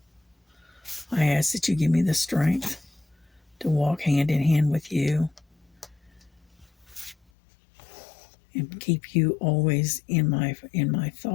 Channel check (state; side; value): drops out; right; at 7.2 s